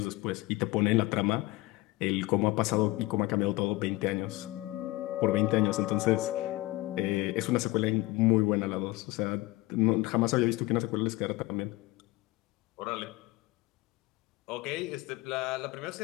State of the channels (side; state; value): right; quieter; 20.2 dB